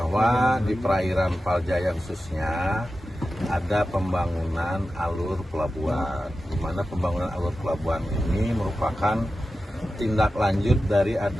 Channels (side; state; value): both; normal; correlation 0.93